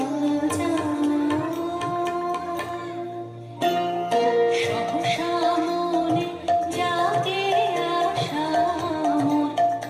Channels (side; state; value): both; identical; correlation 1.00